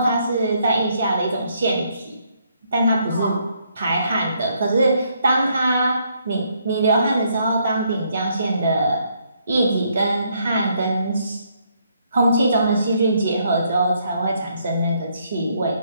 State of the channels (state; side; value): inverted; both; correlation -0.72